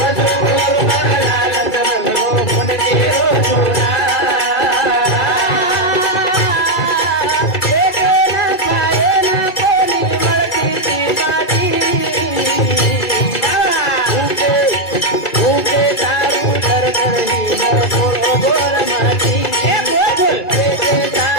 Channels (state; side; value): late; right; 2.3 ms